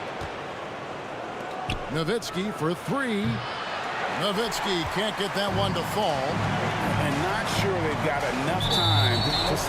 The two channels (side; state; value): both; identical; correlation 1.00